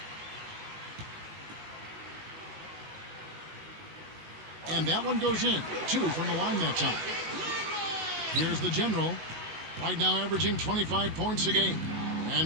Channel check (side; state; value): left; late; 19 ms